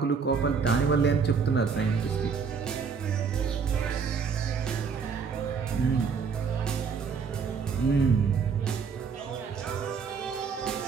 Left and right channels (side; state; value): left; quieter; 5.8 dB